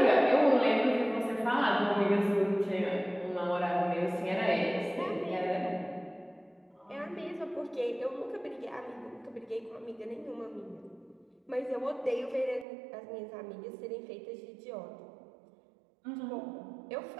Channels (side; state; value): left; drops out; at 12.7 s